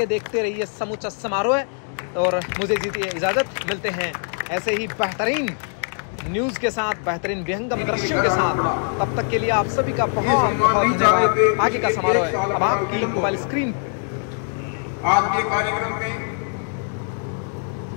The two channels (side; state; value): right; silent; 56 dB below the other